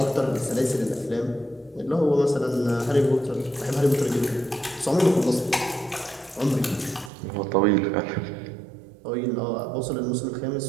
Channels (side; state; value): left; drops out; at 7.1 s